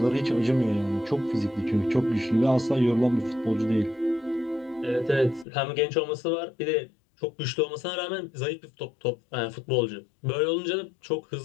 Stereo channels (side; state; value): right; drops out; at 5.5 s